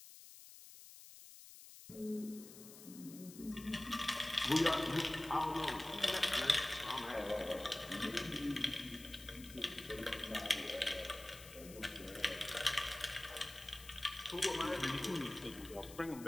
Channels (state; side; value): noise; left; hiss, 16 dB below the sound